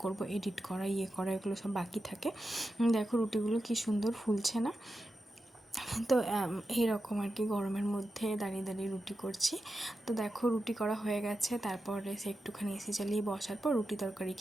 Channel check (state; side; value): normal; both; correlation 0.90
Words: করব, এডিট করা করা এগুলো সব বাকি থাকে। দেখো রুটিগুলো কী সুন্দর ফুলছে না? তো এইরকম আর কি গরমের মধ্যে দাঁড়িয়ে দাঁড়িয়ে রুটি করছি। তো দেখো রুটি করা হয়ে গেছে, তারপরে সে একটুখানি এসি চালিয়ে বসার পর রুটি তরকারি